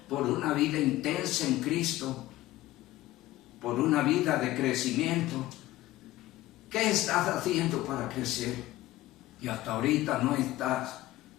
por una vida intensa en Cristo, por una vida de crecimiento. ¿Qué estás haciendo para crecer? Y hasta ahorita no estás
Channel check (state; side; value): quieter; right; 16.4 dB